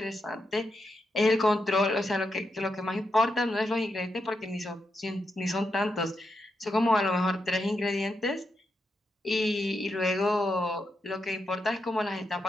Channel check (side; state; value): both; normal; correlation 0.84